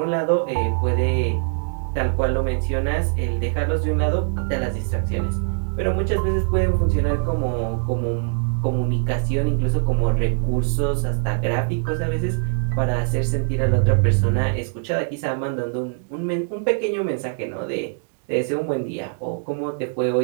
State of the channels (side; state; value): left; silent; 64 dB below the other